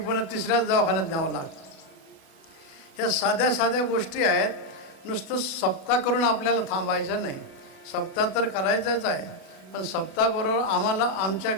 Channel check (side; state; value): right; late; 36 ms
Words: तिसऱ्याच दवाखान्यात न्यावं लागतं. ह्या साध्या साध्या गोष्टी आहेत. नुसतं सप्ताह करून आपल्याला थांबायचं नाही. सप्ताह तर करायचाच आहे, पण सप्ताहाबरोबर आम्हाला आमच्या